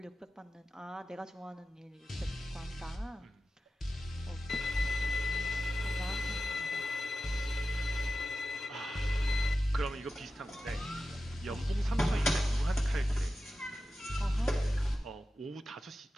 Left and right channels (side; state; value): both; normal; correlation 0.93